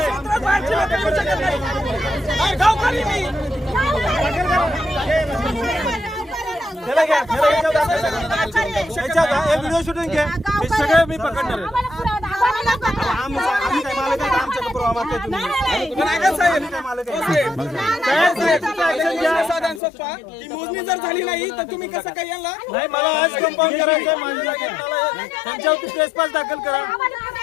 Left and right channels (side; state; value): right; drops out; at 19.8 s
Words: बाहेरची लोक येऊ शकत नाही. गावकरी मी व्हिडिओ शूटिंग घे, हे सगळे मी पकडणार आहे. मोजणी जर झाली नाही तर तुम्ही कसं काय यांना नाही, मला आज कंपाऊंड करायचं आहे माझ्या जागेत. त्यांच्यावरती ट्रेसपास दाखल करा.